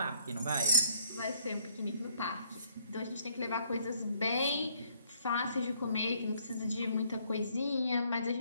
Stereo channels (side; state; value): both; inverted; correlation -0.67